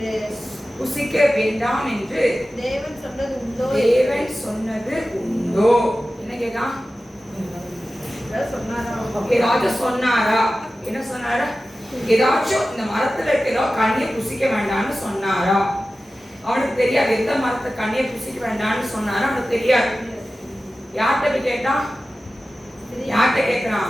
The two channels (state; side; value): normal; both; correlation 0.95